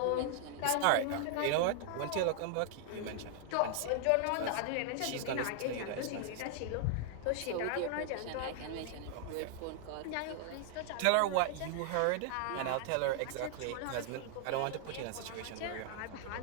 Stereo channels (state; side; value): different; both; correlation -0.01